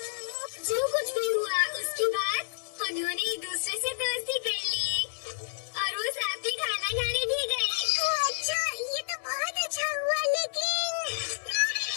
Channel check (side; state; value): right; silent; digital silence